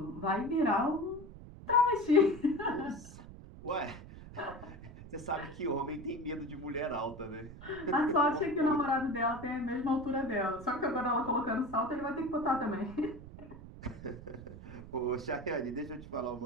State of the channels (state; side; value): noise; right; rumble, 15 dB below the sound